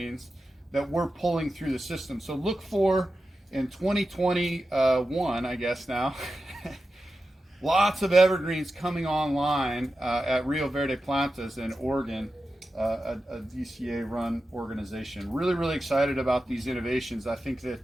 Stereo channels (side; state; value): both; normal; correlation 0.92